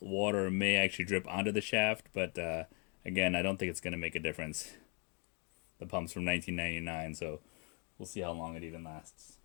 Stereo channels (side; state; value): right; quieter; 35.2 dB